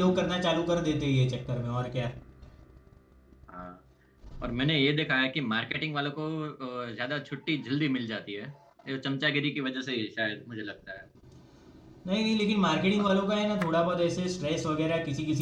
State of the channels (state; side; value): identical; both; correlation 1.00